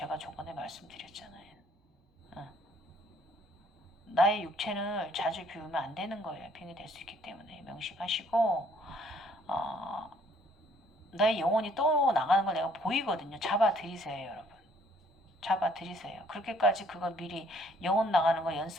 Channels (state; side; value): normal; both; correlation 0.63